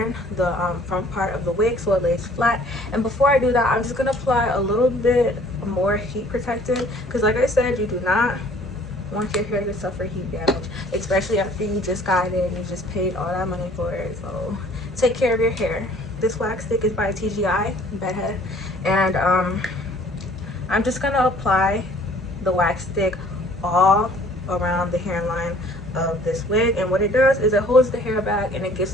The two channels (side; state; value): both; normal; correlation 0.55